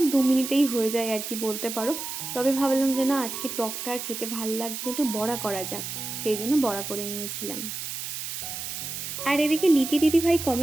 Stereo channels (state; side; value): noise; right; hiss, 6 dB below the sound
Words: 2 মিনিটেই হয়ে যায় আর কি বলতে পারো। তবে ভাবলাম যে না, আজকে টকটা আর খেতে ভালো লাগছে না, একটু বড়া করা যাক, সেই জন্য বড়া করে নিয়েছিলাম। আর এদিকে লিপি দিদিভাই